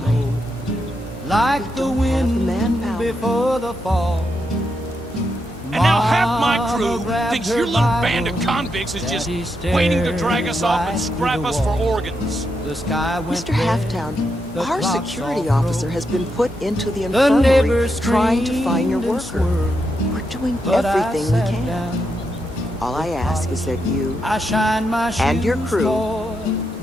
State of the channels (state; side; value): normal; both; correlation 0.83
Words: like the wind before the fall. And now half my crew thinks your little band of convicts is just waiting to drag us off and scrap us for organs. Mr. Halftown, our security officer has been put into the infirmary trying to find your worker. We're doing everything we can. All I ask is that you and your crew